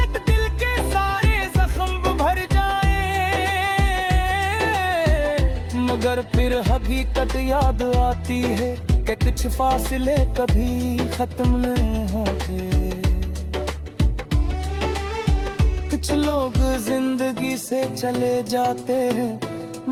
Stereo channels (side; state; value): both; identical; correlation 1.00